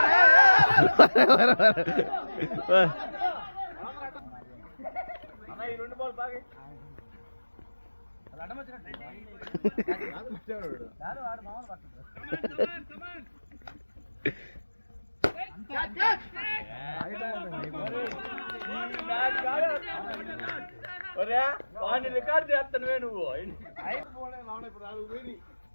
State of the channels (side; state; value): both; inverted; correlation -1.00